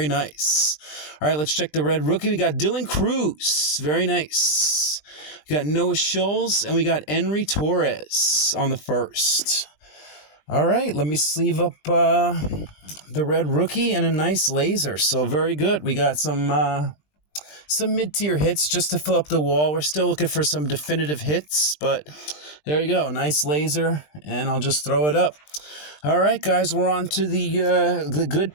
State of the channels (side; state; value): right; late; 20 ms